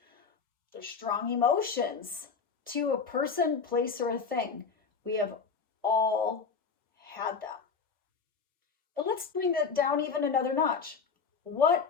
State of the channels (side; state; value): right; quieter; 5.5 dB